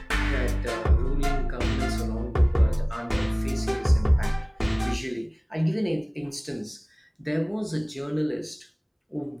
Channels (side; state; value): both; identical; correlation 1.00